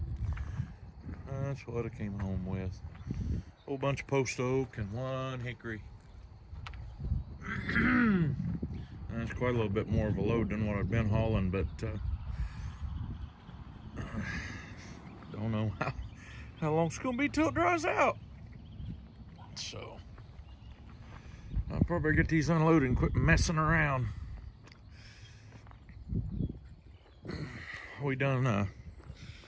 that's what I came home with. A whole bunch of post oak and one hickory. That's quite a little bit more of a load than what I've been hauling, but don't know how long it's gonna be till it dries out. So I'll probably get these unloaded and quit messing around. We kind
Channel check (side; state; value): both; identical; correlation 1.00